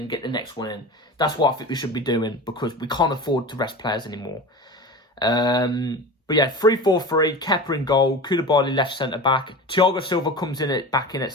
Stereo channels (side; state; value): both; normal; correlation 0.32